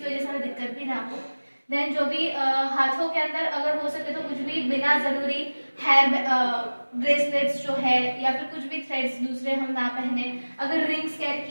वजह से हमें दिक्कत भी ना हो। देन जो भी हाथों के अंदर अगर हो सके तो कुछ भी बिना जरूरी हेयर ब्रेसलेट्स जो है या फिर कुछ भी थ्रेड्स दूसरे हम ना पहने। अगर रिंग्स कैरी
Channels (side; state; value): both; inverted; correlation -1.00